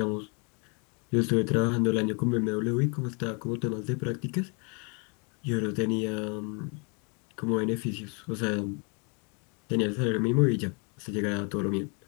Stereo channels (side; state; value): right; quieter; 34.7 dB